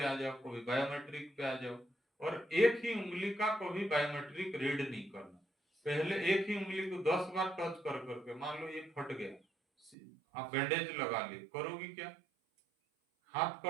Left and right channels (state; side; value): drops out; left; at 10.0 s